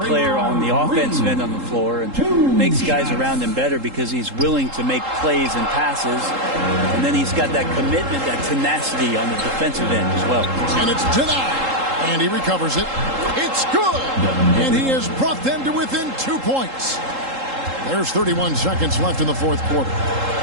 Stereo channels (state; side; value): late; left; 3.8 ms